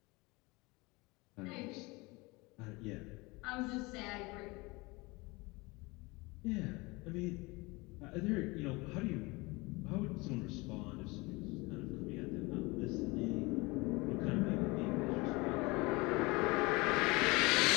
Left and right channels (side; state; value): right; quieter; 24.6 dB